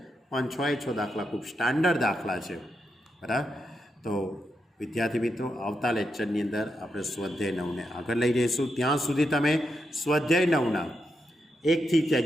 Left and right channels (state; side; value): normal; both; correlation 0.84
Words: પણ 6 દાખલા ખૂબ સ્ટાન્ડર્ડ દાખલા છે. બરાબર, તો વિદ્યાર્થી મિત્રો, આવતા લેક્ચરની અંદર આપણે સ્વાધ્યાય 9ને આગળ લઈ જઈશું. ત્યાં સુધી તમે સ્વાધ્યાય 9ના 1 થી